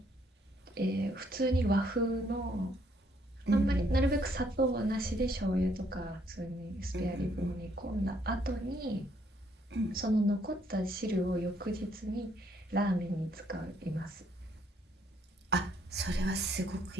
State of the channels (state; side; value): normal; both; correlation 0.69